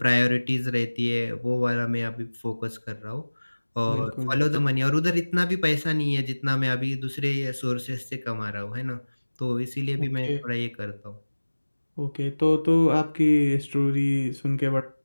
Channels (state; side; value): inverted; both; correlation -1.00